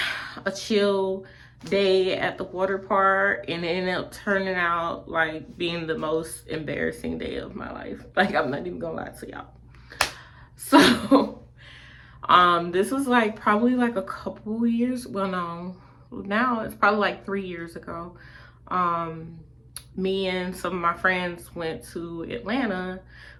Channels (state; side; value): identical; both; correlation 1.00